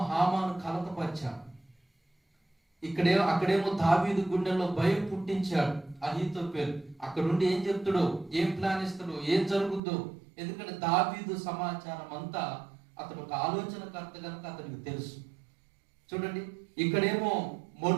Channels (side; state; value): left; drops out; at 9.8 s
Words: హామాను కలతపరిచాడు, అక్కడేమో దావీదు గుండెల్లో భయం పుట్టించాడు అహీతోపెలు. అక్కడుండి ఏం చెప్తాడో, ఏం ప్లాన్ ఇస్తాడో, ఏం జరుగుద్దో, ఎందుకంటే దావీదు సమాచారం అంతా అతను ఒక ఆలోచనకర్త కనుక అతనికి తెలుసు. చూడండి, ఇక్కడేమో